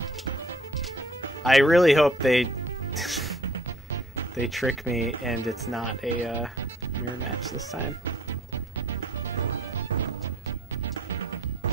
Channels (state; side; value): normal; both; correlation 0.57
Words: I really hope they trick me and it's not a mirror match this time.